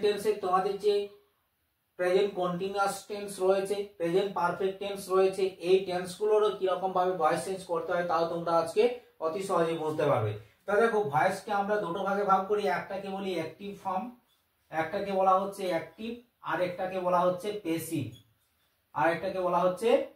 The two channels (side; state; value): both; identical; correlation 1.00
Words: টেন্সের তোমাদের যে প্রেজেন্ট কন্টিনিউয়াস টেন্স রয়েছে, প্রেজেন্ট পারফেক্ট টেন্স রয়েছে, এই টেন্স গুলোরও কিরকম ভাবে ভয়েস চেঞ্জ করতে হয় তাও তোমরা আজকে অতি সহজে বুঝতে পারবে। তো দেখো, ভয়েসকে আমরা দুটো ভাগে ভাগ করি, একটাকে বলি অ্যাক্টিভ ফর্ম, একটাকে বলা হচ্ছে অ্যাক্টিভ, আর একটাকে বলা হচ্ছে